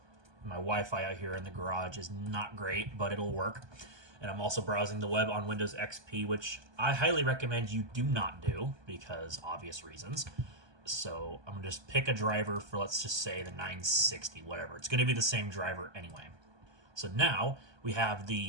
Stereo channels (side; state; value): left; late; 1.2 ms